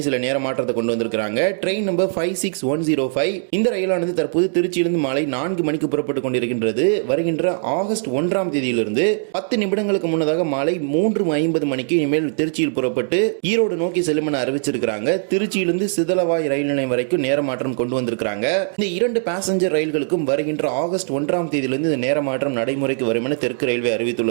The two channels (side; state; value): left; silent; digital silence